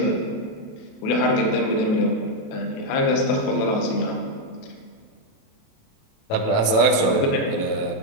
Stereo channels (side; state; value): right; late; 27 ms